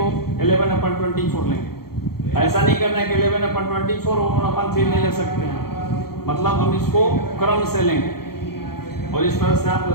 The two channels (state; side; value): late; right; 0.94 ms